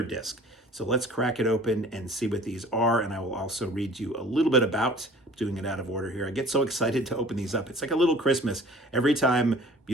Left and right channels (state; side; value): normal; both; correlation 0.48